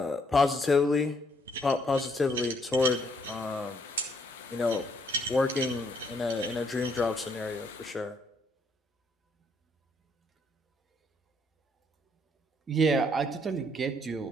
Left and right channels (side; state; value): both; normal; correlation 0.69